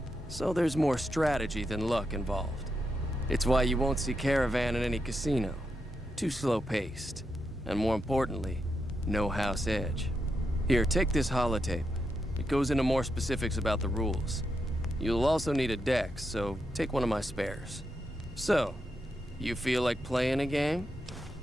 so there's more strategy than luck involved. It's why you won't see caravan in any casino. Too slow-paced, and more importantly, no house edge. Here, take this holotape. It goes into more specifics about the rules. You'll also need a deck, so take one of my spares. So, you feel like playing a game?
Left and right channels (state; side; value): normal; both; correlation 0.84